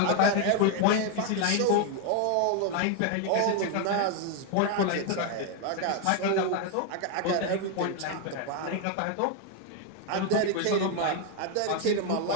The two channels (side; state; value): both; different; correlation 0.01